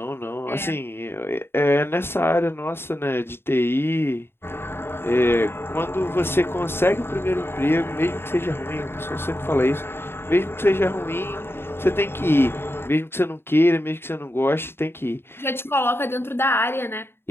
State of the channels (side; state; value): right; late; 0.11 ms